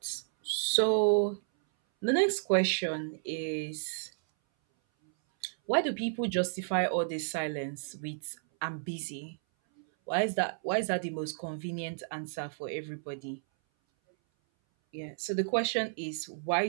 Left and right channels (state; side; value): silent; left; 56 dB below the other